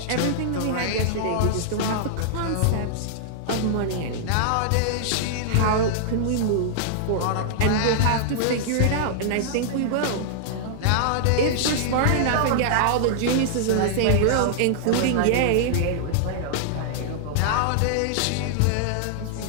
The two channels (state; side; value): different; both; correlation -0.01